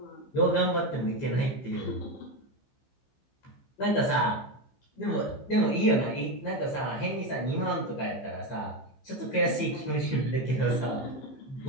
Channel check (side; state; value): right; late; 15 ms